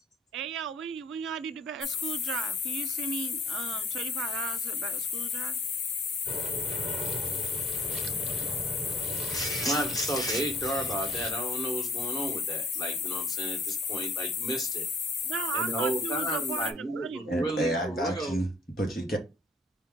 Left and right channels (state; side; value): normal; both; correlation 0.57